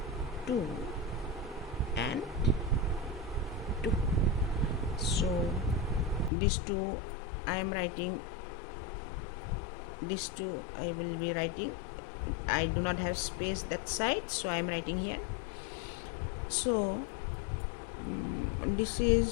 2 and 2. So these two I am writing, these two I will be writing. I do not have space that side, so I am writing here. So this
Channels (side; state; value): right; drops out; at 6.3 s